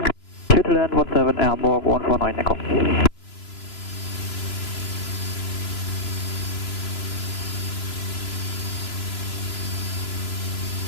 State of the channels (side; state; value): right; late; 3.0 ms